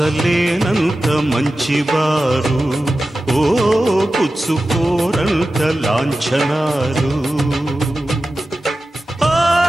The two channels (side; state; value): both; normal; correlation 0.94